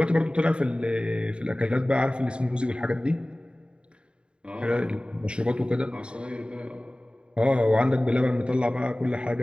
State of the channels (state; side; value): late; left; 0.053 ms